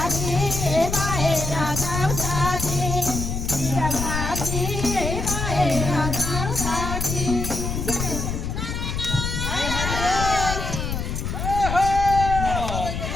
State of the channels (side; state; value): left; noise; rumble, 3 dB below the sound